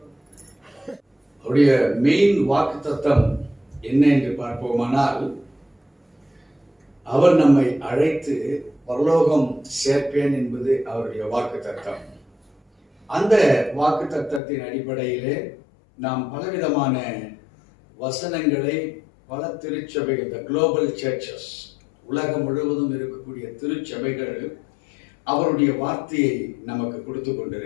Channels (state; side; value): drops out; right; at 14.4 s